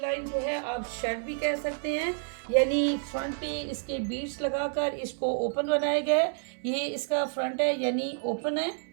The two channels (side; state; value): left; silent; 58 dB below the other